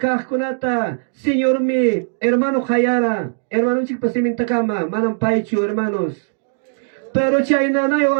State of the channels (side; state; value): left; silent; digital silence